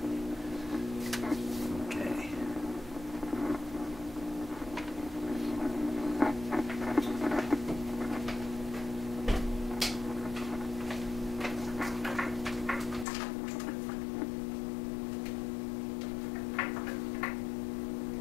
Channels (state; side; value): drops out; right; at 13.1 s